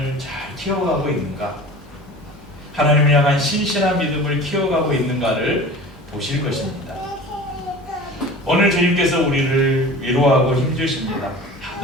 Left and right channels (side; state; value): both; normal; correlation 0.38